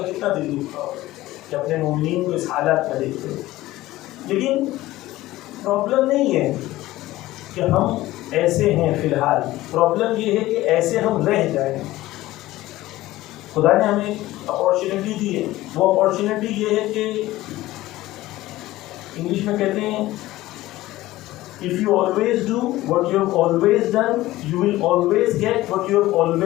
کتنا دل دکھتا ہوگا کہ اپنے مومنین کو اس حالات میں دیکھتے ہیں. لیکن پرابلم نہیں ہے کہ ہم ایسے ہیں فی الحال، پرابلم یہ ہے کہ ایسے ہم رہ جائیں. خدا نے ہمیں اپارچونیٹی دی ہے. وہ اپارچونیٹی یہ ہے کہ انگلش میں کہتے ہیں if you always do what you have always done, you will always get what you have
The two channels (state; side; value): quieter; right; 16.8 dB